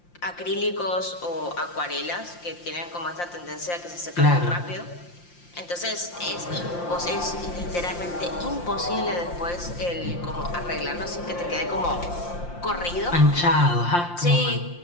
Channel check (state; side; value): late; right; 5.7 ms